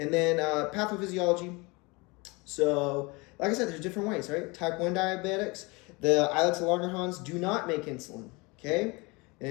then pathophysiology. So, like I said, there's different ways, right? Type 1 diabetics, the islets of Langerhans do not make insulin, okay?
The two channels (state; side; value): quieter; right; 26.4 dB